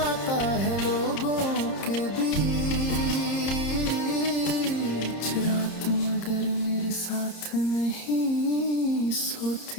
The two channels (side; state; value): right; late; 30 ms